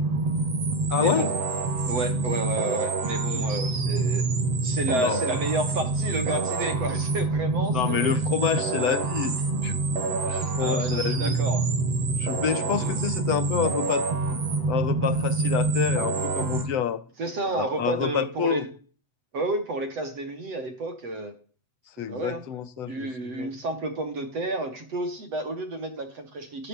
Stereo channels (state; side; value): late; left; 7.9 ms